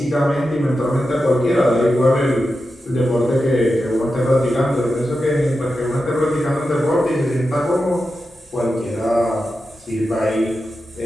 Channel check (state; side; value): normal; both; correlation 0.90